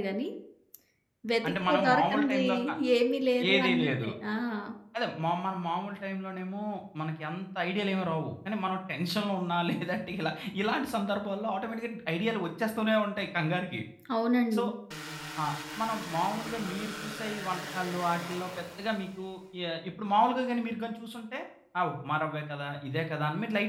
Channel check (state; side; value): identical; both; correlation 1.00